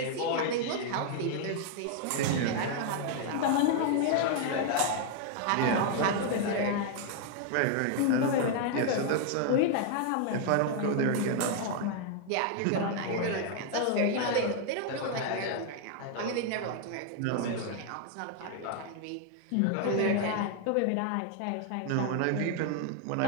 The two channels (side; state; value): both; different; correlation 0.00